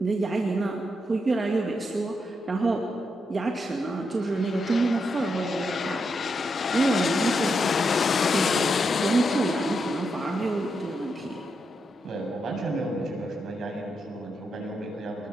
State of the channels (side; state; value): both; normal; correlation 0.83